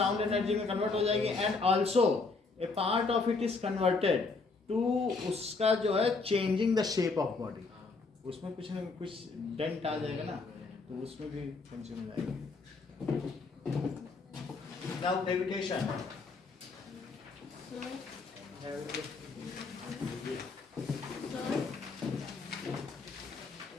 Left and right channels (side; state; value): right; quieter; 4.1 dB